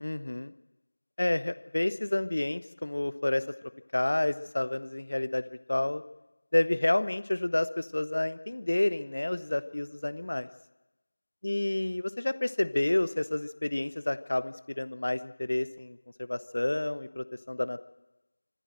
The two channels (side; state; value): both; inverted; correlation -1.00